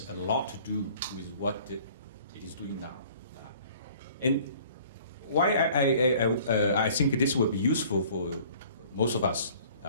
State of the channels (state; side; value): inverted; both; correlation -0.52